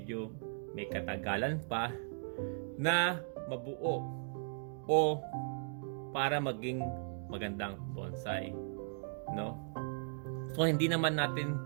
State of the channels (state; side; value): silent; left; digital silence